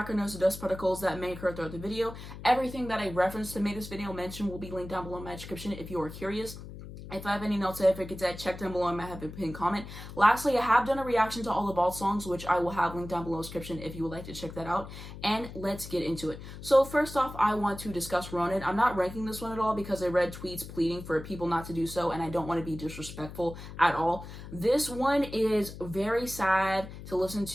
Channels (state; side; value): noise; left; hum, 12 dB below the sound